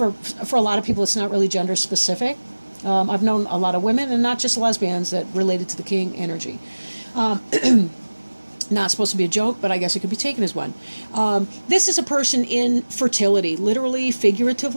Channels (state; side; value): inverted; both; correlation -1.00